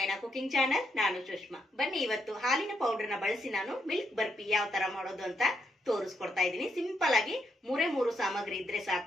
cooking channel. ನಾನು ಸುಷ್ಮಾ. ಬನ್ನಿ, ಇವತ್ತು ಹಾಲಿನ ಪೌಡರ್ ನ ಬಳಸಿ ನಾನು ಮಿಲ್ಕ್ ಬರ್ಫಿ ಯಾವ ತರ ಮಾಡೋದು ಅಂತ ತೋರಿಸ್ಕೊಡ್ತಾ ಇದ್ದೀನಿ. ಸಿಂಪಲ್ ಆಗಿ ಮೂರು ಸಾಮಗ್ರಿ ಇದ್ರೆ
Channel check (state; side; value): normal; both; correlation 0.79